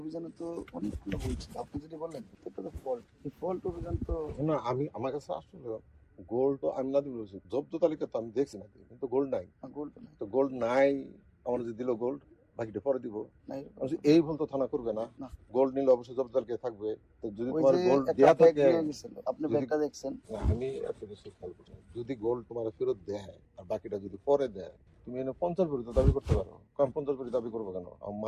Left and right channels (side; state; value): both; identical; correlation 1.00